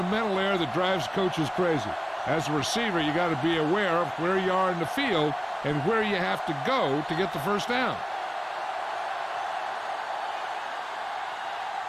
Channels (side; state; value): both; identical; correlation 1.00